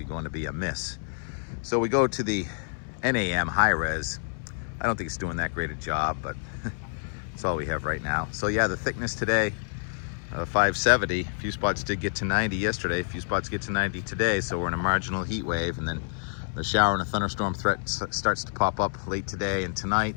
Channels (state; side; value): silent; right; 59 dB below the other